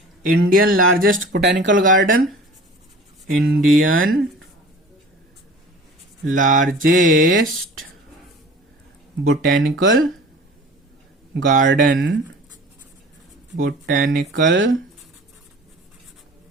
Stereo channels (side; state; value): both; normal; correlation 0.43